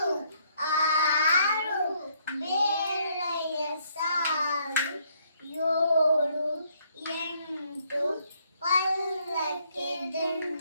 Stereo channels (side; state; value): both; inverted; correlation -0.69